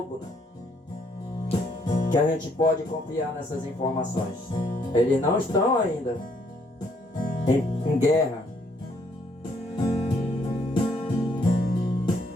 né? Que a gente pode confiar nessas informações. Eles não estão ainda em guerra.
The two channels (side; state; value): both; normal; correlation 0.69